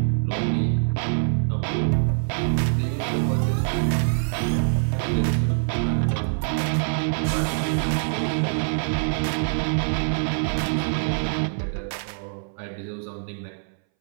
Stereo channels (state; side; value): silent; left; 61 dB below the other